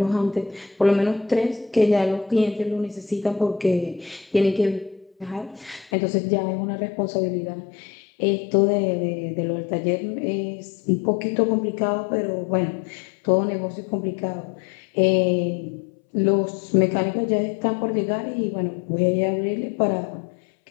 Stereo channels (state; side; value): drops out; right; at 5.9 s